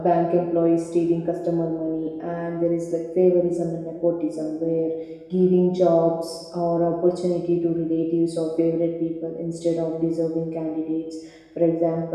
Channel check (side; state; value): both; identical; correlation 1.00